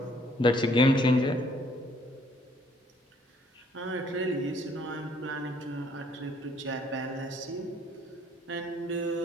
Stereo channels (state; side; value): normal; both; correlation 0.63